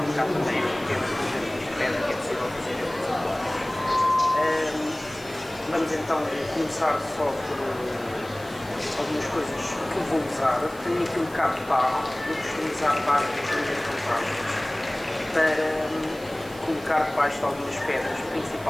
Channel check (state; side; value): noise; right; hiss, 20 dB below the sound